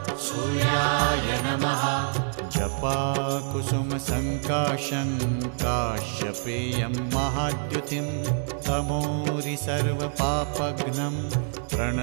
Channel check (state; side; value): silent; left; digital silence